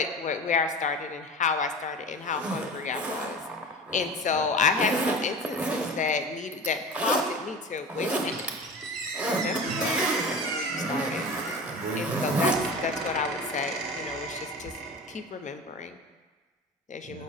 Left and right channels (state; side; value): normal; both; correlation 0.33